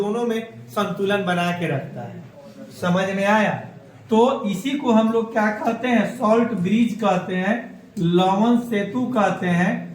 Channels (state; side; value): identical; both; correlation 1.00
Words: में संतुलन बना के रखता है। समझ में आया। तो इसी को हम लोग क्या कहते हैं, सॉल्ट ब्रिज कहते हैं, लवण सेतु कहते हैं।